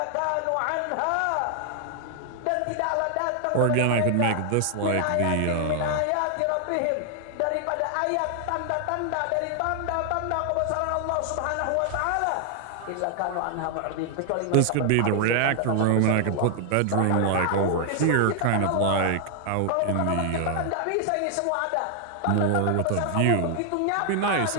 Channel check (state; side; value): different; both; correlation 0.00